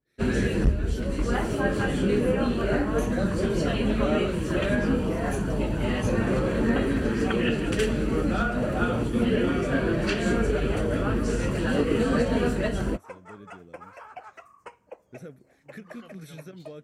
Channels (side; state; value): both; identical; correlation 1.00